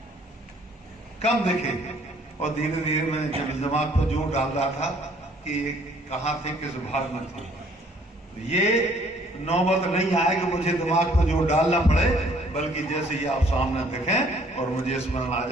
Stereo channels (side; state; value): both; normal; correlation 0.60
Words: कम दिखे। और धीरे धीरे मैं जब दिमाग पर जोर डाल रहा था कि कहाँ थे, किस भाग में थे, तो ये नौबत नहीं आए कि मुझे दिमाग पर जोर डालना पड़े, बल्कि जैसे ही आप सामने दिखें और मुझे स्मरण आ